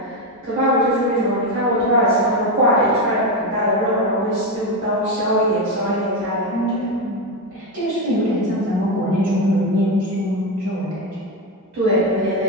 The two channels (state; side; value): normal; both; correlation 0.12